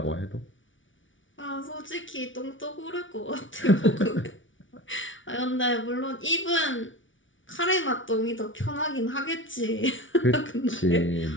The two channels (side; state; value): right; late; 0.56 ms